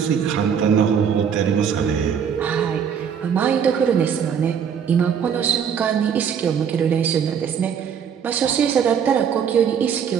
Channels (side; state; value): left; quieter; 7.6 dB